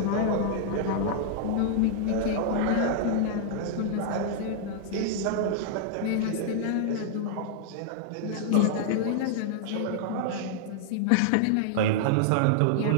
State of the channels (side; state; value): both; different; correlation -0.01